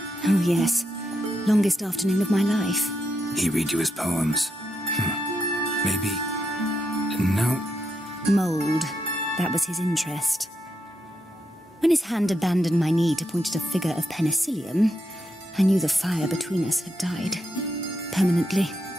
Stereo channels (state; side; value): normal; both; correlation 0.82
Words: Oh, yes. Longest afternoon of my life. He read you his poems. Maybe... No. Mould. That was his interest. When his hand abandoned my knee to point at a figure of penicillium, I knew the fire between us had died. Permanently.